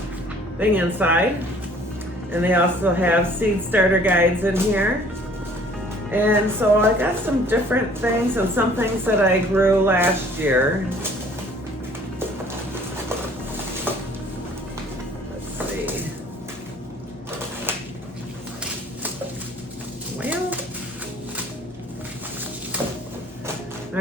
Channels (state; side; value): normal; both; correlation 0.54